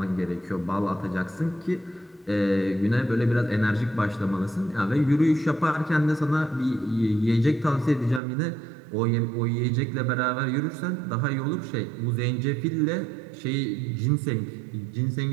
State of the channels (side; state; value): left; drops out; at 8.2 s